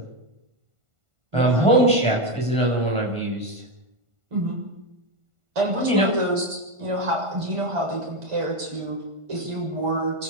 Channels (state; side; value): late; left; 1.5 ms